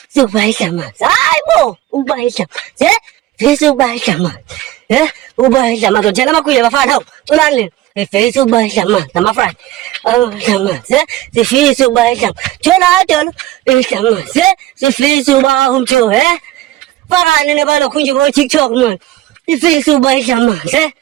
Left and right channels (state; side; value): quieter; left; 14.9 dB